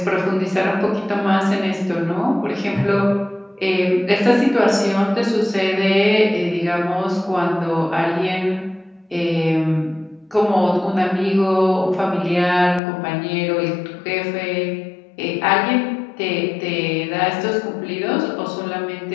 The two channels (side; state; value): right; drops out; at 12.8 s